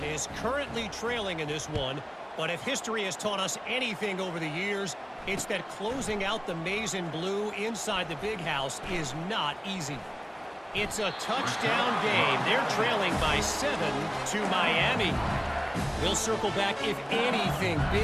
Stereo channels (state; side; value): identical; both; correlation 1.00